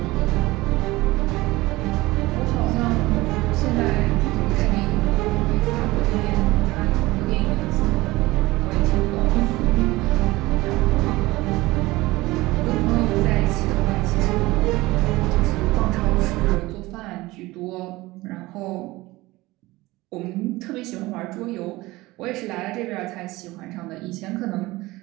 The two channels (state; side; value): quieter; left; 19.9 dB